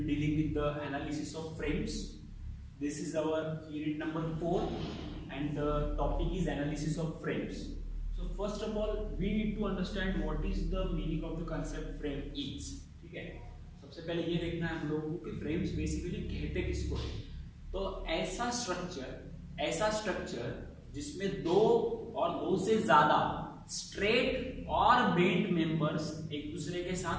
be dealing with the analysis of frames. This is our unit number 4 and the topic is analysis of frames. So first of all, we need to understand what is the meaning of the concept frame is. ठीक है, सबसे पहले ये देखना है हम लोगों को कि frames basically कहते किसको है। तो ऐसा स्ट्रक्चर जिसमें दो और दो से ज्यादा स्ट्रेट और बेंट मेंबर्स एक दूसरे के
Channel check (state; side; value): identical; both; correlation 1.00